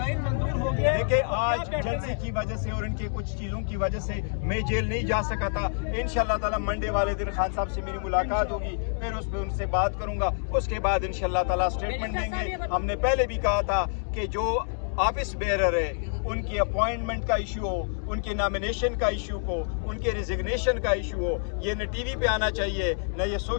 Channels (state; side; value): silent; right; digital silence